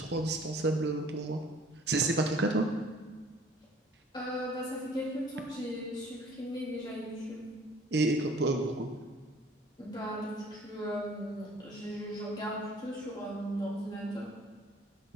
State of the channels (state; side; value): normal; both; correlation 0.54